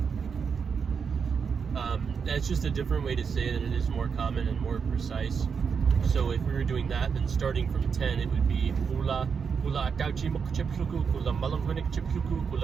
That's just a different way to say it, and it is more common and more precise. So if we were doing that, then starting from 10, it would be hula atauchimukchipshuku, hula malangwinikchipshuku,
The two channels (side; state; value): left; quieter; 6.1 dB